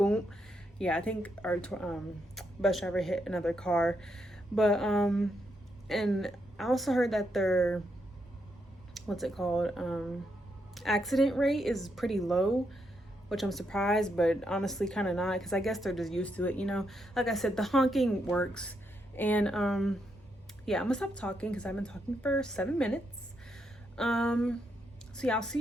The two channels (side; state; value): both; normal; correlation 0.80